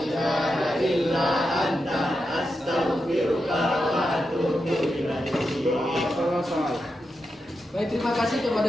ilaha illa anta astaghfiruka wa atubu ilaik. Baik, terima kasih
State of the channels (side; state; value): both; normal; correlation 0.87